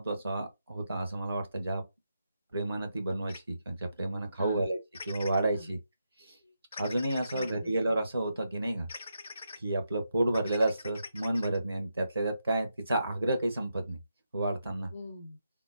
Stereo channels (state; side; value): inverted; both; correlation -0.84